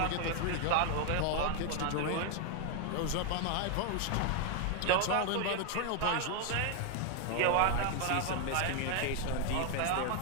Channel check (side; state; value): both; different; correlation 0.00